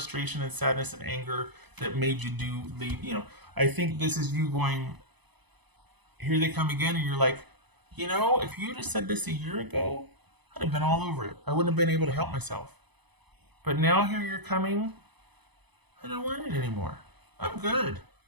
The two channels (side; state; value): left; late; 0.99 ms